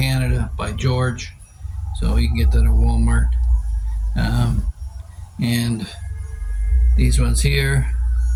by George, so you can get that at Walmart. And these ones here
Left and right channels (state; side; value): identical; both; correlation 1.00